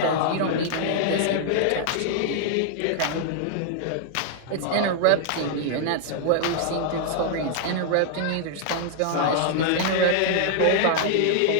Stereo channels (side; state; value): both; different; correlation 0.00